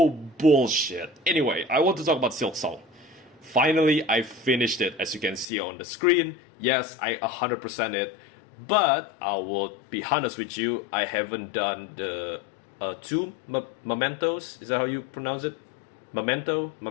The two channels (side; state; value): right; drops out; at 5.5 s